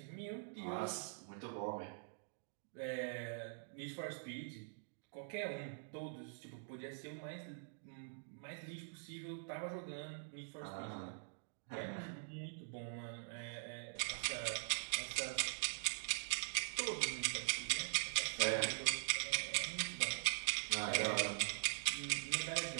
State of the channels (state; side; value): silent; left; digital silence